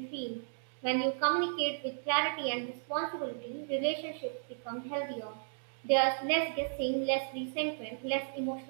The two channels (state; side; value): silent; left; digital silence